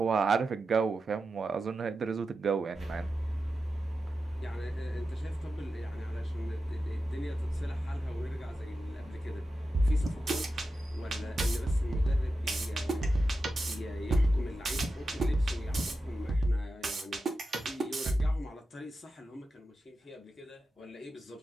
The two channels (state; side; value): normal; both; correlation 0.91